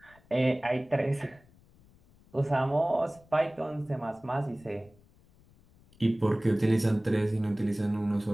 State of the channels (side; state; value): left; noise; rumble, 29 dB below the sound